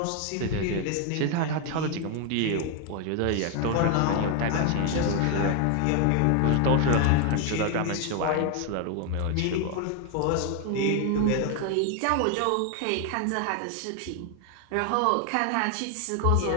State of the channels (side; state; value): both; different; correlation 0.01